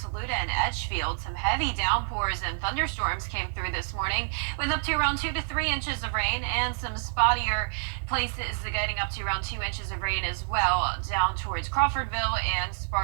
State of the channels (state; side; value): silent; left; digital silence